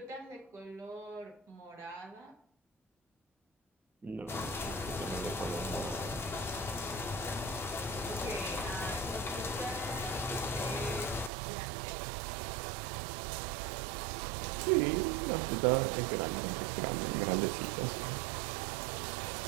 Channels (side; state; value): left; drops out; at 11.3 s